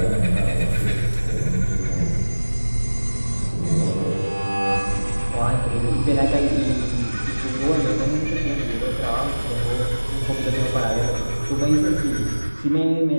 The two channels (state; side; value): inverted; both; correlation -1.00